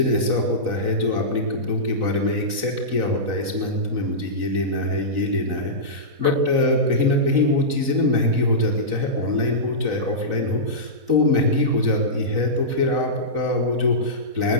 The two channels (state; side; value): late; left; 4.0 ms